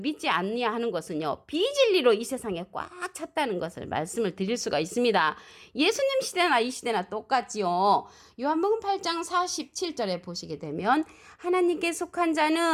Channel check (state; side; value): identical; both; correlation 1.00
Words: 아니하는 것은요. 비진리로 이 세상에 꽉 찼다는 것을 말씀을 드릴 수가 있습니다. 예수님 시대나 이 시대나 똑같지요. 요한복음 8장 47절에 보시게 되면 하나님께 속한